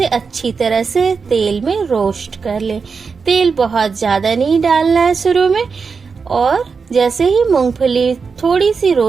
अच्छी तरह से तेल में रोस्ट कर लें। तेल बहुत ज्यादा नहीं डालना है शुरू में, और जैसे ही मूंगफली थोड़ी सी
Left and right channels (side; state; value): left; quieter; 5.2 dB